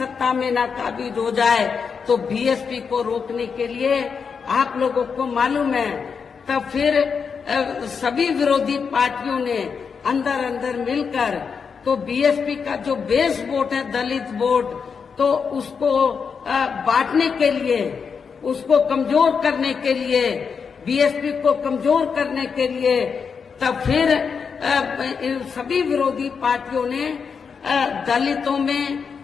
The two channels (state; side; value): quieter; right; 6.0 dB